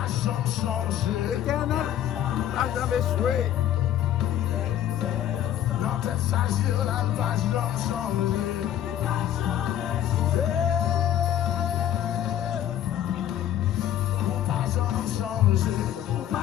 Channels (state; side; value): quieter; right; 11.4 dB